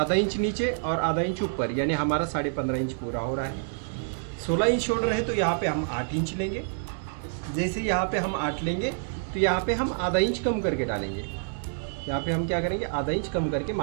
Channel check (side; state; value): left; silent; digital silence